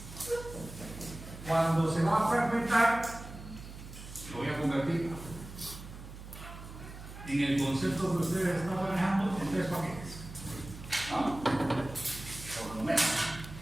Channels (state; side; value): noise; right; hum, 13 dB below the sound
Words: Cuando se va a fragmentar, lo voy a convertir en el concepto que ustedes están manejando en 3 paquetes. ¿No? Por lo menos.